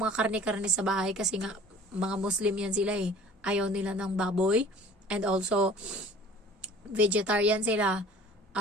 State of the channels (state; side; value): normal; both; correlation 0.48